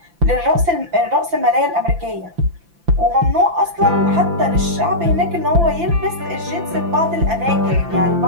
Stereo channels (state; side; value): late; left; 5.9 ms